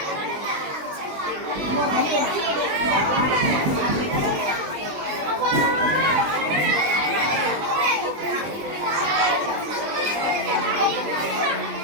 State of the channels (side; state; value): left; late; 20 ms